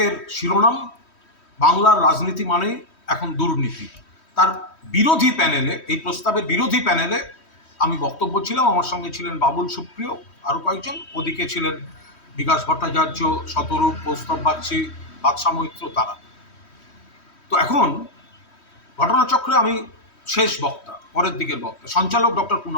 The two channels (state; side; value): late; right; 3.1 ms